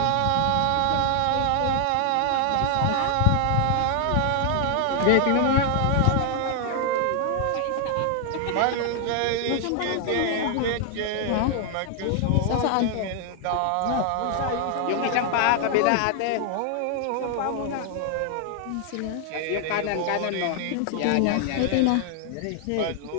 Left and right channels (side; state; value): both; different; correlation 0.00